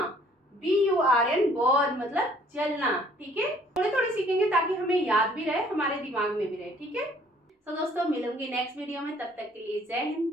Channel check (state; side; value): normal; both; correlation 0.59